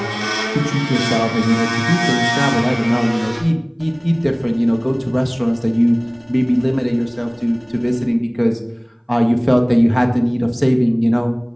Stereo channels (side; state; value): both; identical; correlation 1.00